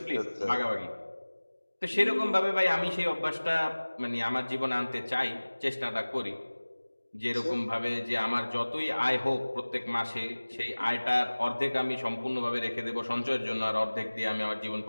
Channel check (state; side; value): inverted; both; correlation -1.00